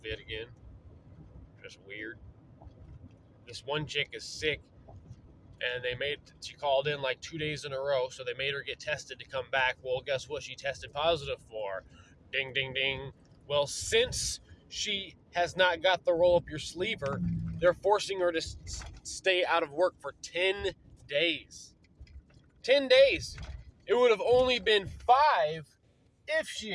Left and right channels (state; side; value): identical; both; correlation 1.00